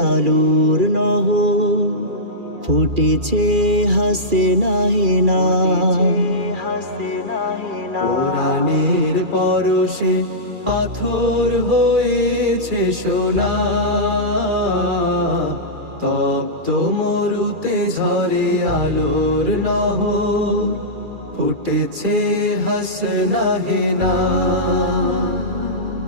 আলোর নহর, ফুটেছে হাসনা হেনা। কুরআনের পরশে পাথর হয়েছে সোনা, তপ্ত মরুতে ঝরে আলোর নহর, ফুটেছে হাসনা হেনা।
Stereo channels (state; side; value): late; left; 2.4 ms